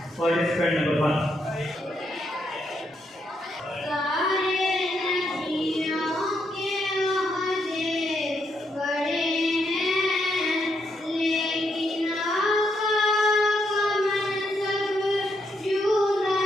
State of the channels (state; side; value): normal; both; correlation 0.78